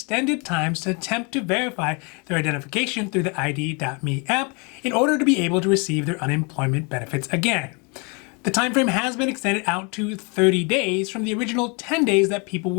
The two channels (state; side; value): quieter; right; 32.1 dB